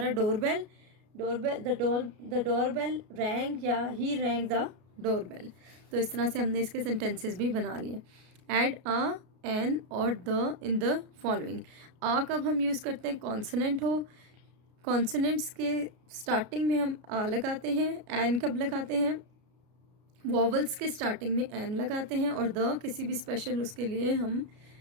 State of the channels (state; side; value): late; left; 33 ms